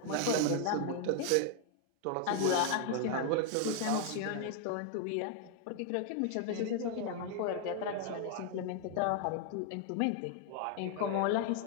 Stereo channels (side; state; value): both; different; correlation 0.00